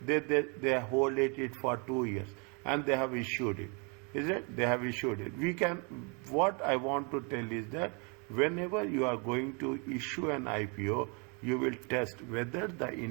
They hold it for 2 years and they have issued it. Is it? They have issued it. What I want to tell is that whenever you are going to issue an IPO, you will test whether the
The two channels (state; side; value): quieter; left; 34.2 dB